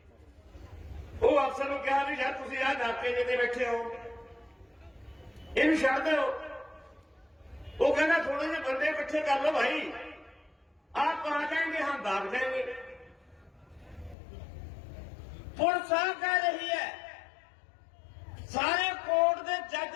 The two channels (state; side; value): drops out; right; at 14.2 s